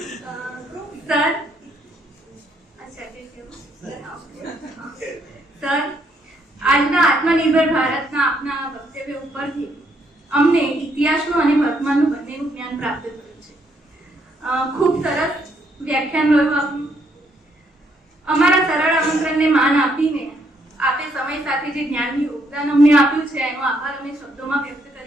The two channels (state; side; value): normal; both; correlation 0.72